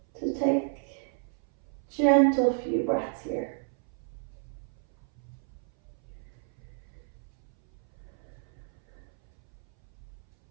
to take gentle few breaths here.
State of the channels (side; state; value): left; silent; 57 dB below the other